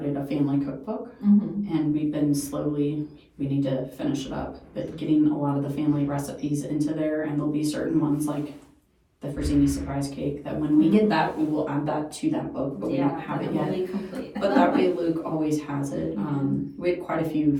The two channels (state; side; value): identical; both; correlation 1.00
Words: a family cookbook, and we've been we need to finish it up, but getting a lot of the family recipes into there, and there'll be certain ones like the Frazzini surprise cake that when we get that, we will add that to that book, but we don't have it yet. But that way Luke always has it. We had quite a few